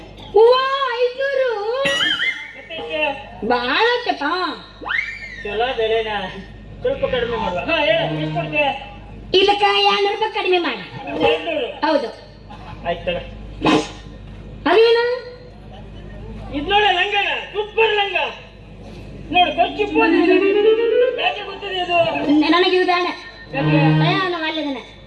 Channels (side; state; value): both; identical; correlation 1.00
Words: ಹೂವ 500 ಭಾಳ ಆಯ್ತಪ್ಪ ಚಲೋ ಬೆಲೆನಾ ಸ್ವಲ್ಪ ಕಡಿಮೆ ಮಾಡುವ ಹಾ ಹೇಳ ಎಷ್ಟು ಕೊಡ್ತೆ ಇದಕ್ಕೆ 200 ರೂಪಾಯಿ ಕಡಿಮೆ ಮಾಡಿ 200 ಹೌದು ಆಯ್ತು ತಗ ಅದೇನು ಇದು ನೋಡ ಲಂಗನ ಸೂಪರ್ ಲಂಗ ನೋಡು ಕೊಚ್ಚಿ ಯಾಕೆ ಗೊತ್ತಿದೆ ಇದು ನನಗೆ ಇದು ಬೇಡ ಯಾಕೆ ನಾವು ಅಲ್ಲಿದ್ದಾನೆ